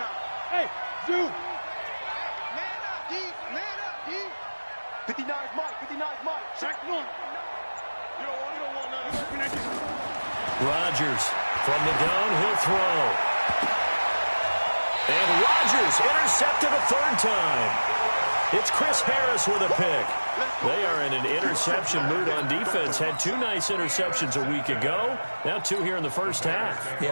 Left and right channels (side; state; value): both; inverted; correlation -1.00